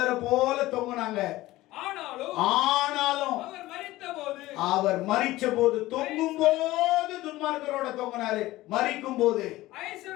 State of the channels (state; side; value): quieter; right; 17.4 dB